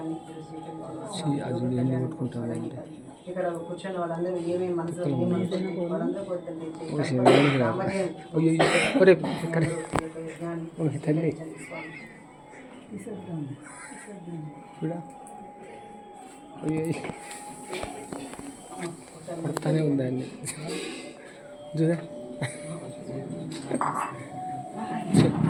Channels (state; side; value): identical; both; correlation 1.00